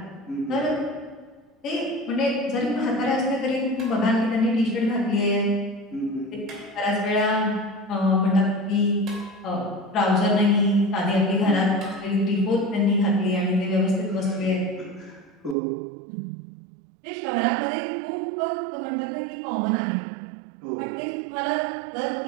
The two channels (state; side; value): drops out; left; at 15.6 s